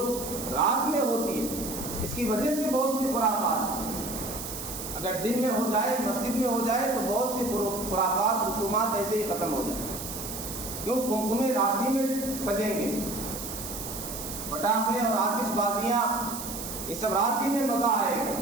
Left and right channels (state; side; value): noise; right; hiss, 8 dB below the sound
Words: رات میں ہوتی ہے اس کی وجہ سے بہت سی خرافات، اگر دن میں ہو جائے، مسجد میں ہو جائے تو بہت سی خرافات، رسومات ایسے ہی ختم ہو جائیں۔ کیوں؟ قمقمے رات ہی میں سجیں گے، پٹاخے اور آتش بازیاں یہ سب رات ہی میں مزہ آئے گا۔